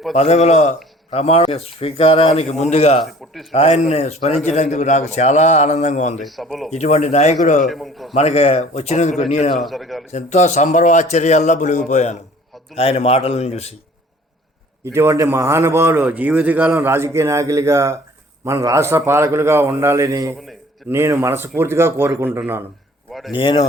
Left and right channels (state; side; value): normal; both; correlation 0.51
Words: పదవిలో ప్రమాణ స్వీకారానికి ముందుగా ఆయన్ని స్మరించినందుకు నాకు చాలా ఆనందంగా ఉంది. ఇటువంటి నాయకుడు మనకి వచ్చినందుకు నేను ఎంతో సంబరవాశ్చర్యాల్లో మునిగిపోయాను ఆయన మాటలను చూసి. ఇటువంటి మహానుభావులు జీవితకాలం రాజకీయ నాయకులుగా, మన రాష్ట్ర పాలకులుగా ఉండాలని నేను మనస్ఫూర్తిగా కోరుకుంటున్నాను. నేను